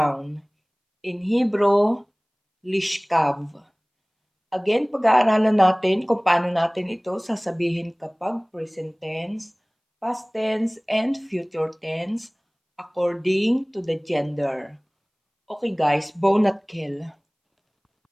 In Hebrew, Lishkav. Again, pag-aaralan natin kung paano natin ito sasabihin kapag present tense, past tense, and future tense according to the gender. Okay guys, bone at kill.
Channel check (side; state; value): both; identical; correlation 1.00